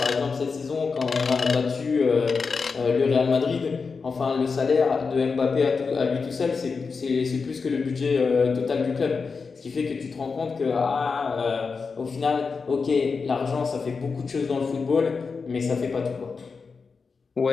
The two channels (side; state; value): right; quieter; 4.9 dB